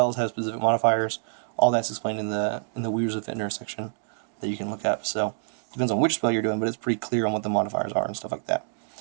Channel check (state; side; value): silent; left; digital silence